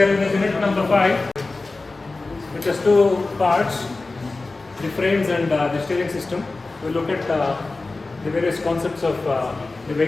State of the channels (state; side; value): quieter; right; 3.4 dB